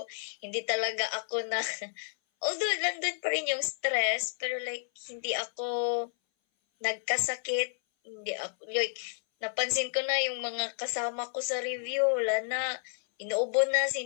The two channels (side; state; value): right; silent; 57 dB below the other